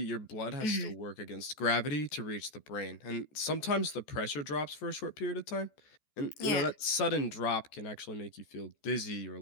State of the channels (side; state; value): right; late; 14 ms